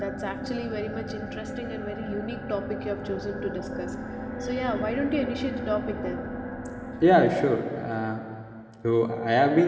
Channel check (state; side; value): identical; both; correlation 1.00